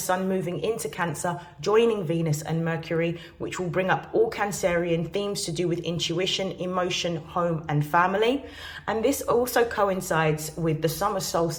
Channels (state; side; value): identical; both; correlation 1.00